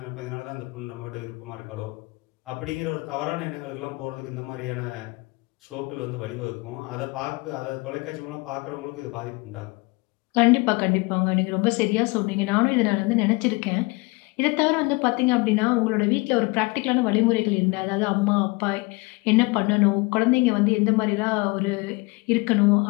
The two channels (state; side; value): quieter; right; 25.8 dB